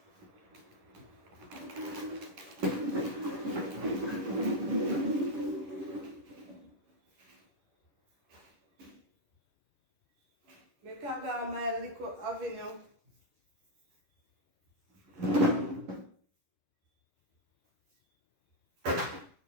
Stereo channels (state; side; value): late; left; 11 ms